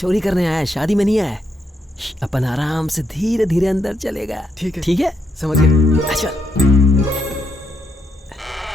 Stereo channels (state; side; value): normal; both; correlation 0.79